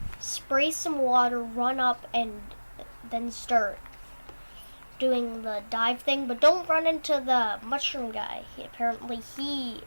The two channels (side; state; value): both; inverted; correlation -1.00